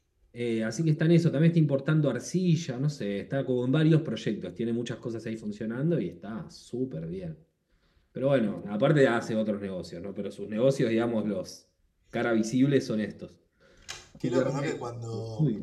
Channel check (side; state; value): both; identical; correlation 1.00